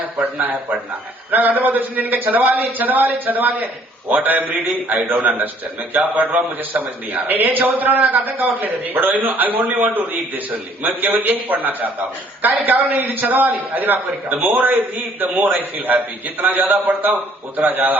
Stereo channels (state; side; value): normal; both; correlation 0.60